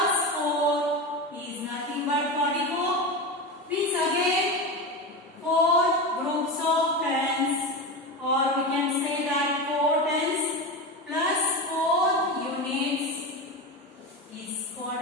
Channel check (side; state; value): both; normal; correlation 0.21